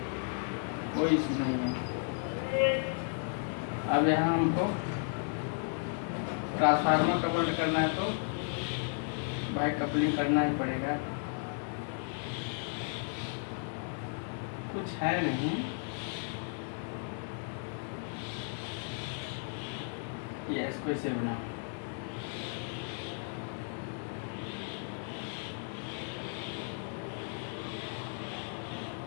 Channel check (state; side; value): silent; right; 55 dB below the other